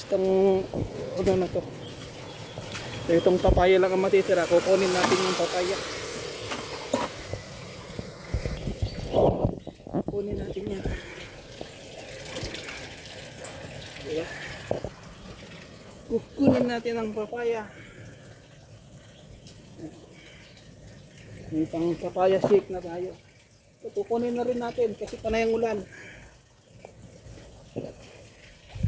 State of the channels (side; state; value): both; identical; correlation 1.00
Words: itong ano na to. So itong papaya lang ang matitira, kukunin natin yung papaya. Kukunin natin yan. Diba? Kukunin natin ang papaya. May pang papaya shake na tayo. So, kukunin na rin natin kasi panay ang ulan.